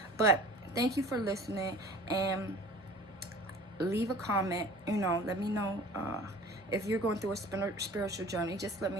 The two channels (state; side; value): normal; both; correlation 0.44